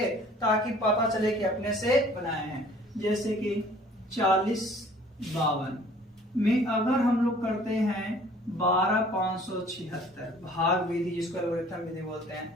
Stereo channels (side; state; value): both; normal; correlation 0.53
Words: ताकि पता चले कि अपने से बनाए हैं। जैसे कि 4052 में अगर हम लोग करते हैं 12576 भाग विधि जिसको एल्गोरिथम विधि बोलते